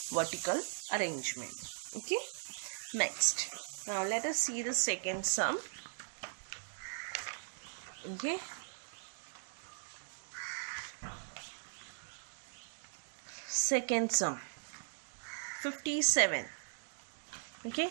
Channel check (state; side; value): silent; left; digital silence